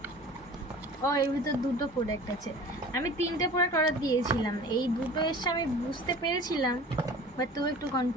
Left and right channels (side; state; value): both; normal; correlation 0.42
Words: ও এর ভিতর দুটো প্রোডাক্ট আছে। আমি 3টে প্রোডাক্ট অর্ডার দিয়েছিলাম, এই দুটো এসে আমি বুঝতে পেরেছিলাম, বাট তুই একটু